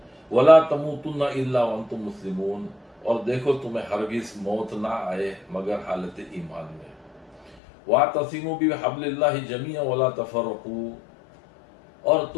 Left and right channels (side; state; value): right; drops out; at 7.6 s